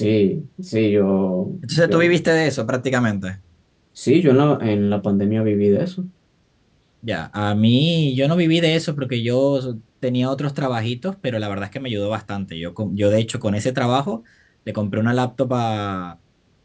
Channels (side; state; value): both; identical; correlation 1.00